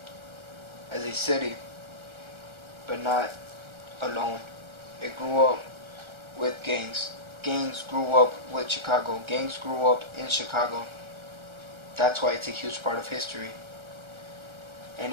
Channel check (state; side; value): late; left; 1.3 ms